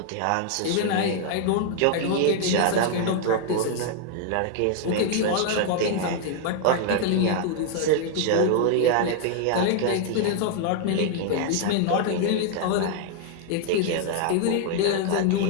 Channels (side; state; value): both; different; correlation 0.00